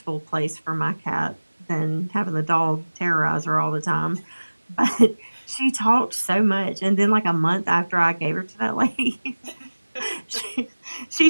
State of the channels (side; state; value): both; inverted; correlation -1.00